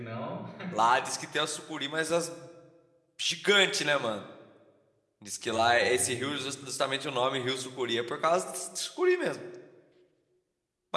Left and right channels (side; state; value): both; identical; correlation 1.00